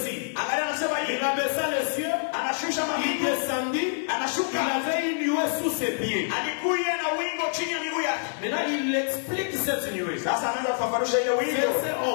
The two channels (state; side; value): silent; right; digital silence